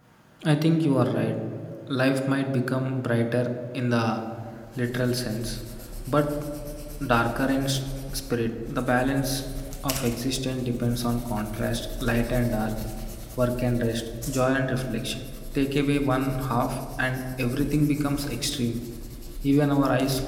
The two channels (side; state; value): both; identical; correlation 1.00